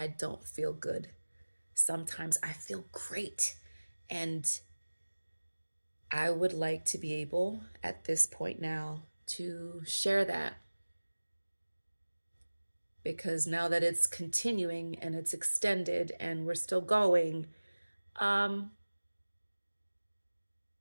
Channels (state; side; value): inverted; both; correlation -1.00